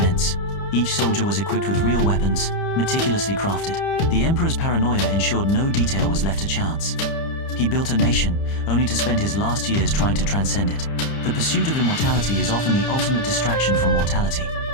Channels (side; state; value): right; late; 30 ms